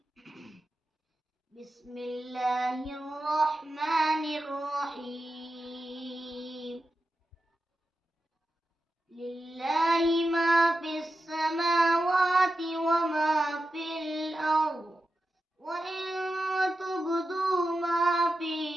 بسم الله الرحمن الرحيم. لله ما في السماوات وما في الأرض، وإن تبدوا ما في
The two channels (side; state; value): both; normal; correlation 0.90